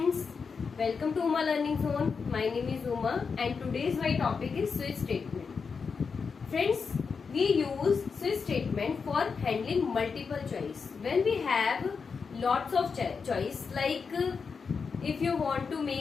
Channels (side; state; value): right; quieter; 5.4 dB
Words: welcome to Uma Learning Zone. My name is Uma and today's my topic is switch statement. Friends, we use switch statement for handling multiple choice. When we have lots of choice, like if you want to